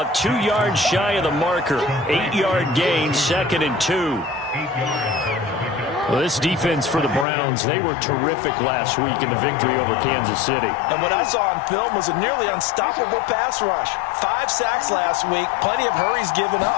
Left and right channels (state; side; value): drops out; right; at 7.2 s